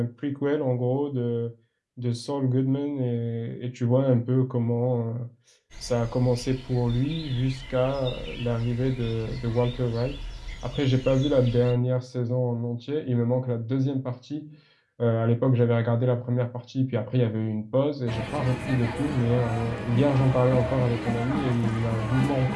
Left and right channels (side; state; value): both; identical; correlation 1.00